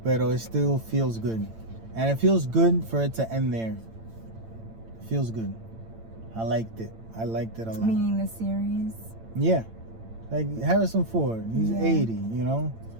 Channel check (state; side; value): late; left; 8.9 ms